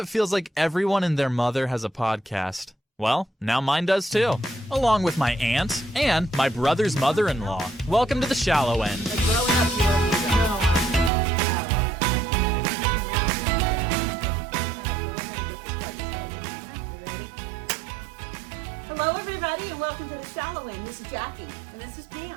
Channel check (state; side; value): drops out; left; at 11.1 s